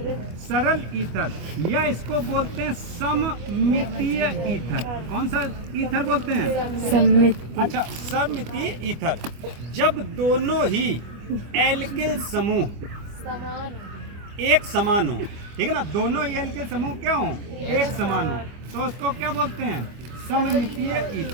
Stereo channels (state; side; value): late; left; 25 ms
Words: सरल ईथर, या इसको बोलते हैं सममितीय ईथर। कौन सा ईथर बोलते हैं? सममितीय। अच्छा, सममितीय ईथर जब दोनों ही एल्किल समूह एक समान हो, ठीक है ना, दोनों ही एल्किल समूह क्या हो? एक समान हो, तो उसको क्या बोलते हैं? सममितीय